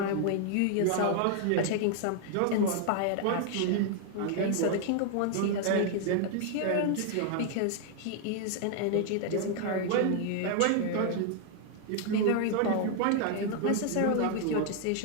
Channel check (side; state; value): both; different; correlation 0.00